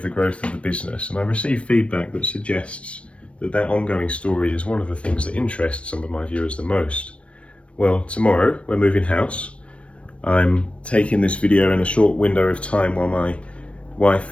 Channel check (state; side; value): late; right; 0.061 ms